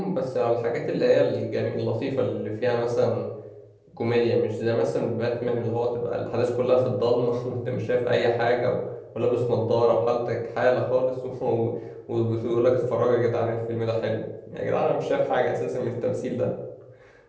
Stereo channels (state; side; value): identical; both; correlation 1.00